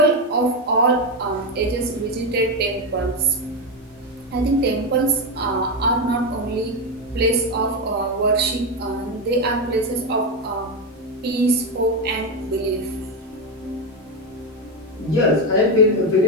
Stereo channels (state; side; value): normal; both; correlation 0.10